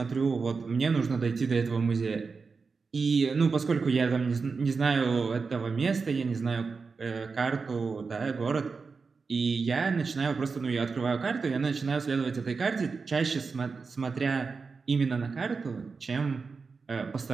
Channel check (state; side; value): quieter; left; 4.8 dB